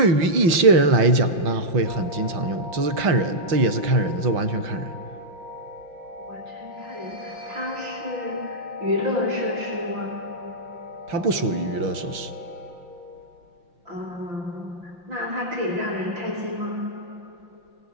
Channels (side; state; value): left; late; 5.8 ms